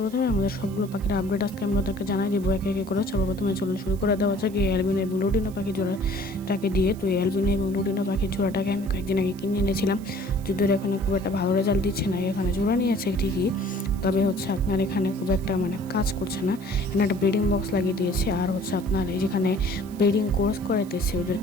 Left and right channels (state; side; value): noise; right; hiss, 23 dB below the sound